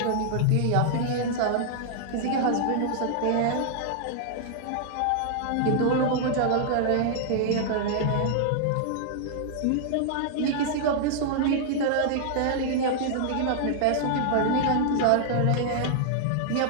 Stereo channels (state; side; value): different; both; correlation -0.01